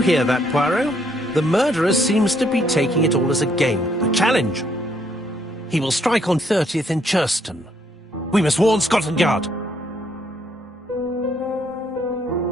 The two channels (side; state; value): both; normal; correlation 0.70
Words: hear that, Poirot? The murderer seems to be taking it all as a game, a challenge. He will strike on 30th in Churston. We must warn Scotland Yard.